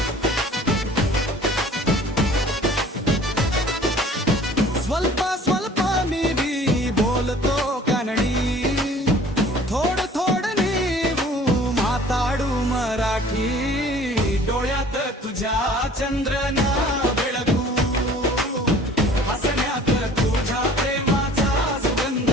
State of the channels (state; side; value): normal; both; correlation 0.49